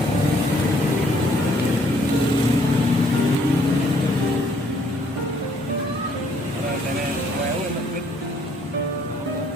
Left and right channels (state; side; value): normal; both; correlation 0.65